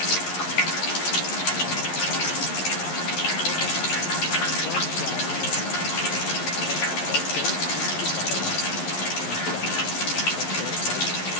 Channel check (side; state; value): right; late; 11 ms